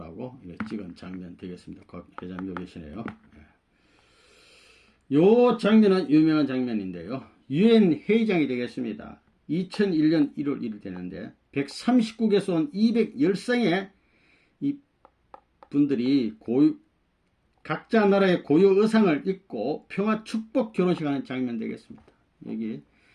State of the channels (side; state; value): both; identical; correlation 1.00